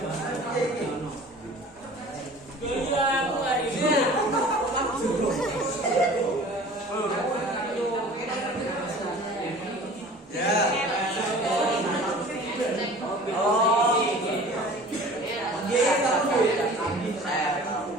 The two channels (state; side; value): normal; both; correlation 0.44